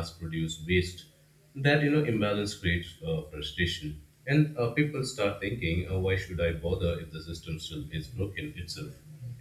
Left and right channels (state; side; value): identical; both; correlation 1.00